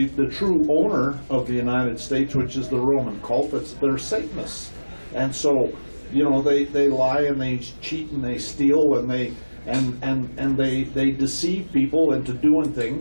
true owner of the United States, which is the Roman cult. They're Satanists. And so, they lie and they cheat and they steal and they deceive people into doing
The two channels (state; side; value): inverted; both; correlation -1.00